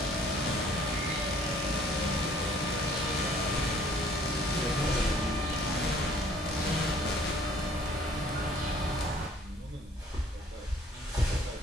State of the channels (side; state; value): both; normal; correlation 0.57